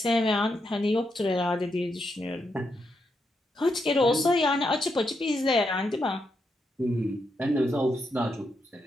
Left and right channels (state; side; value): normal; both; correlation 0.82